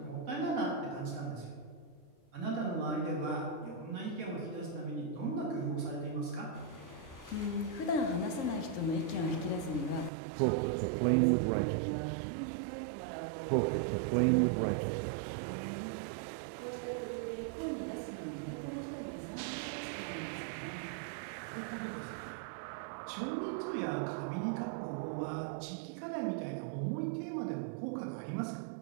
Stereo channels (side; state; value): left; drops out; at 10.1 s